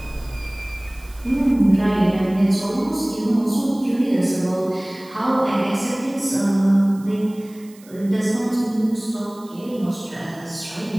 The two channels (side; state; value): right; noise; hiss, 25 dB below the sound